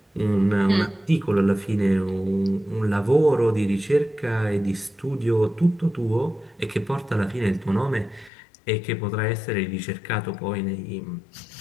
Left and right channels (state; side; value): drops out; right; at 8.3 s